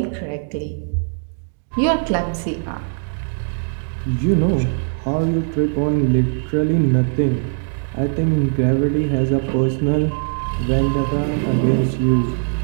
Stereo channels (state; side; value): silent; left; 63 dB below the other